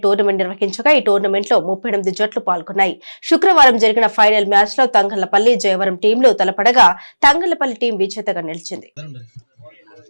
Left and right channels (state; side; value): inverted; both; correlation -1.00